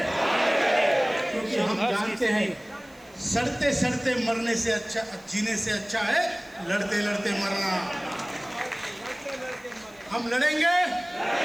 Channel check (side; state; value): right; noise; hiss, 28 dB below the sound